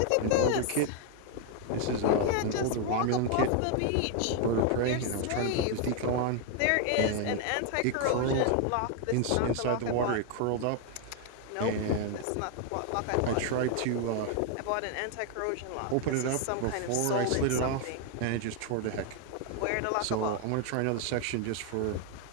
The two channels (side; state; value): both; different; correlation 0.00